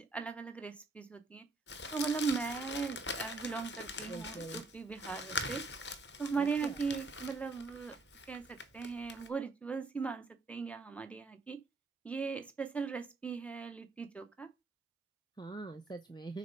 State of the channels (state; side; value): quieter; left; 3.4 dB